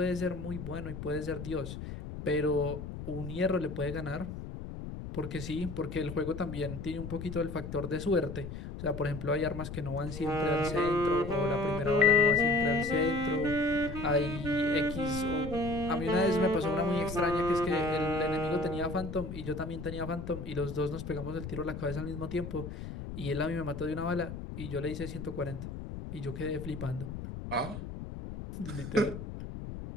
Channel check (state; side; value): noise; left; rumble, 8 dB below the sound